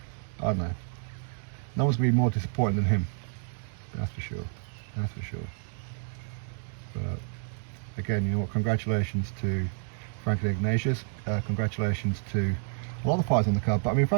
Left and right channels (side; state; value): left; silent; 57 dB below the other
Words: I don't know. No one's going to be more disappointed than him. That's for sure. That's for sure. But again, you know what? Congratulations to Franklin Ignatius. Congratulations to a lot of fighters on the card. But I mean,